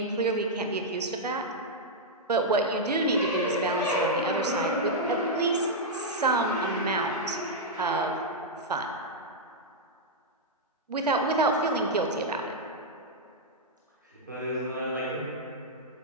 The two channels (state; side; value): normal; both; correlation -0.05